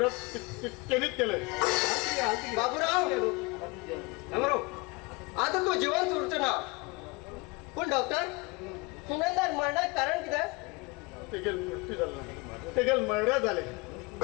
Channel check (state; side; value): quieter; right; 26.2 dB